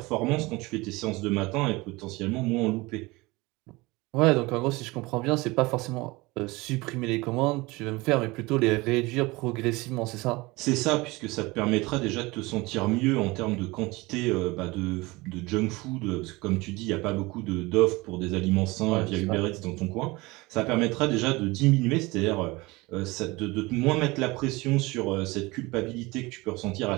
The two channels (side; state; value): left; quieter; 22.7 dB